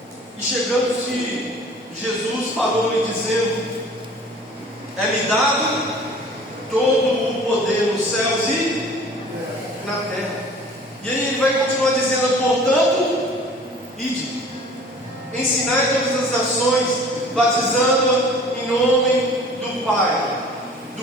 chegando-se, Jesus falou-lhe dizendo: é-me dado todo o poder nos céus e na terra. E aí ele vai continuar dizendo: portanto, ide, ensinai todas as nações, batizando em nome do Pai,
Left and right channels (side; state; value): both; normal; correlation 0.47